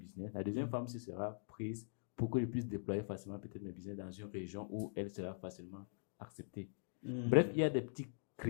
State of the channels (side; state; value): right; silent; digital silence